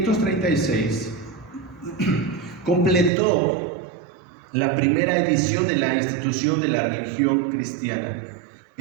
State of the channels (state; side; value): drops out; left; at 3.1 s